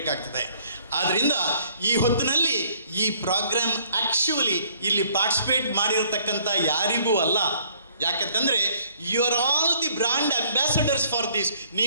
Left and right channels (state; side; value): inverted; both; correlation -0.62